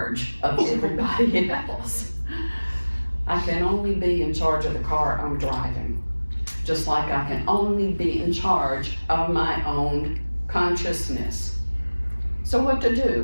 of everybody else. I can only be in charge of the car I'm driving. Just like I can only be in charge of my own consciousness. So what to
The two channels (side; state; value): both; inverted; correlation -1.00